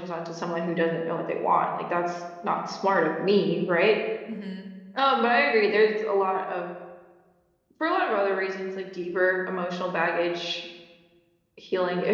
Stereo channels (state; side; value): identical; both; correlation 1.00